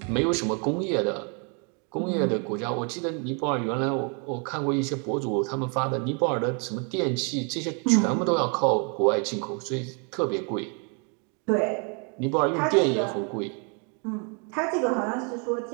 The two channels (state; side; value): quieter; left; 36.9 dB